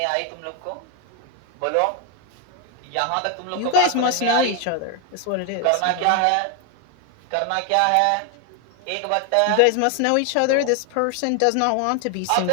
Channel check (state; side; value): different; both; correlation 0.01